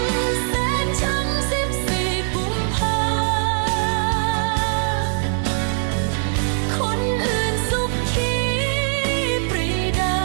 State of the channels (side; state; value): left; silent; digital silence